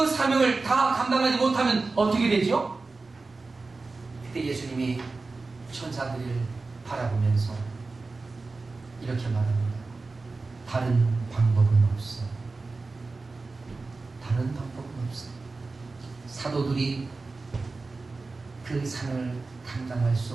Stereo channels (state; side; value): quieter; left; 3.7 dB